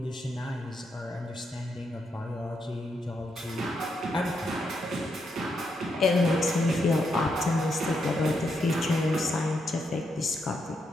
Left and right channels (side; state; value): both; normal; correlation 0.80